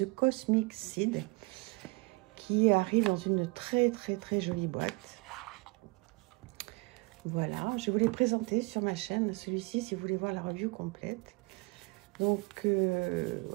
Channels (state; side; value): quieter; left; 27.1 dB